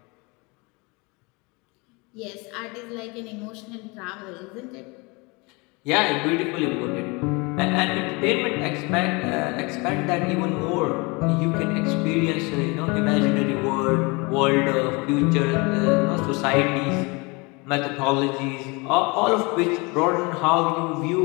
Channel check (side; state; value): right; quieter; 27.6 dB